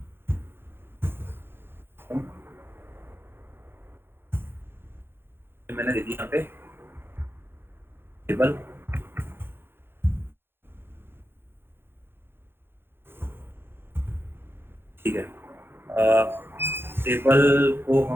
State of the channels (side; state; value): left; late; 0.11 ms